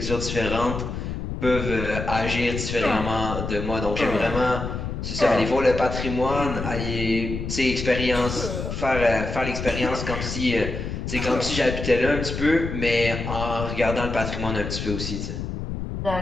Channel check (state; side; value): noise; left; rumble, 5 dB below the sound